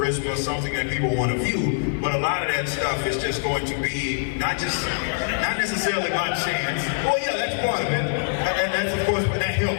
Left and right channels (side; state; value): right; silent; 63 dB below the other